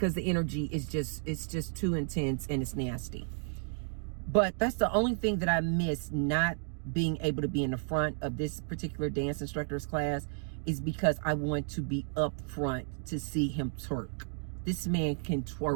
the energy is it's just too intense and it's nasty. But that's the only thing that I miss not being able to be in the front of this particular dance instructor's class, is because I want to be up front to see him twerk. This man can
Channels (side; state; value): left; silent; 56 dB below the other